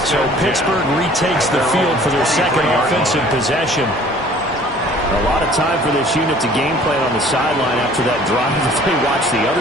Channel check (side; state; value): both; normal; correlation 0.51